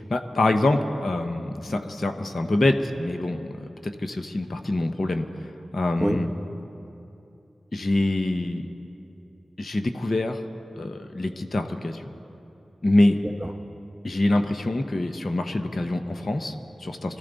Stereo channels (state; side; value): normal; both; correlation 0.97